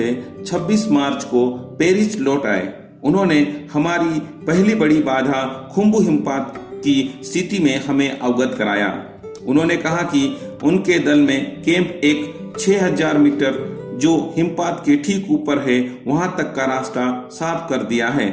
26 मार्च को पेरिस लौट आए। उन्होंने हमारी पहली बड़ी बाधा खुम्बू हिमपात की स्थिति में हमें अवगत कराया। उन्होंने कहा कि उनके दल में कैंप एक 6000 मीटर जो हिमपात के ठीक ऊपर है वहां तक का रास्ता साफ कर दिया है।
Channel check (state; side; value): identical; both; correlation 1.00